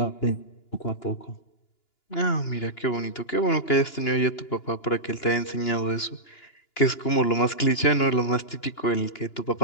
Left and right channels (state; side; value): late; right; 2.9 ms